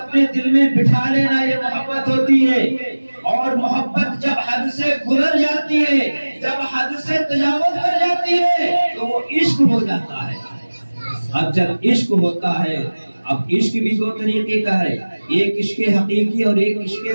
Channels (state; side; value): inverted; both; correlation -1.00